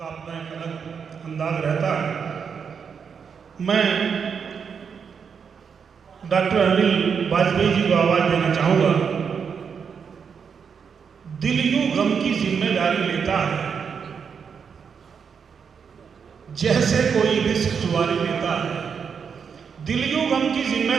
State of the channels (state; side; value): quieter; left; 6.5 dB